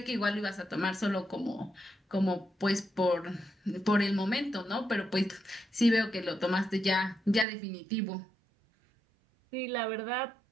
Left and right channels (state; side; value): drops out; left; at 7.5 s